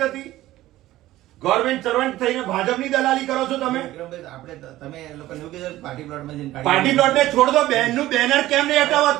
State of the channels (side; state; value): left; quieter; 15.6 dB